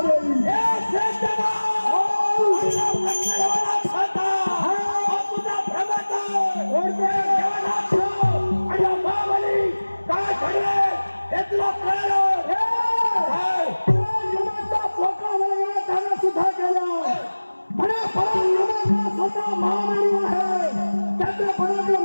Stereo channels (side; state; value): both; inverted; correlation -1.00